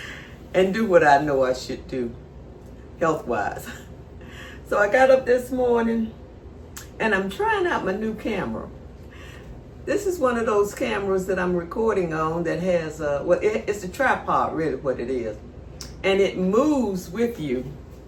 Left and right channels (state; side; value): identical; both; correlation 1.00